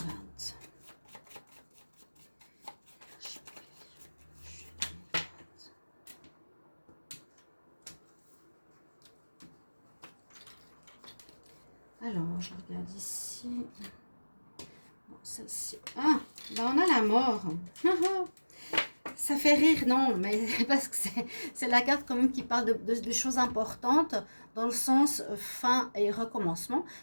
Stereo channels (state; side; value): inverted; both; correlation -1.00